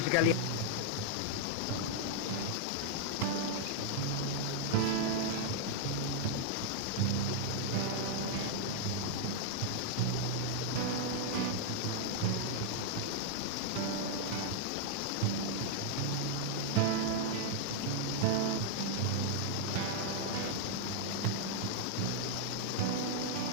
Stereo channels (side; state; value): both; different; correlation -0.01